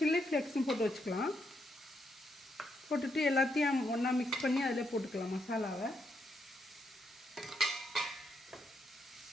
ஃப்ளேக்ஸும் போட்டு வச்சுக்கலாம். போட்டுட்டு எல்லாத்தையும் ஒன்றா மிக்ஸ் பண்ணி அதில் போட்டுக்கலாம் மசாலாவை.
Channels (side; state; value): both; normal; correlation 0.79